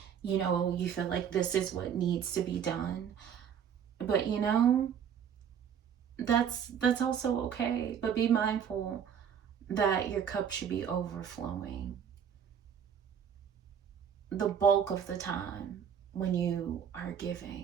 you know, you feel like this is what needs to be done. But, you know, that's also okay. But be mindful that your cup should be overflowing the bulk of the time when you are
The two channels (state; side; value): quieter; left; 8.2 dB